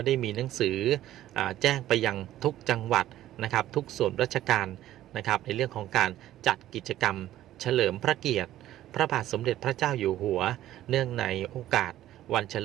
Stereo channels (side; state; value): left; quieter; 13.5 dB